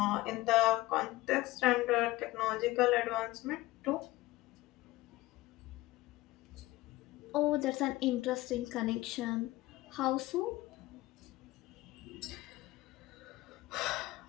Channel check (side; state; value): right; quieter; 18.8 dB